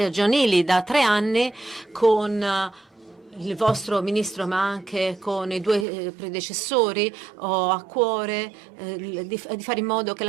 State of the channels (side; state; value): left; drops out; at 5.9 s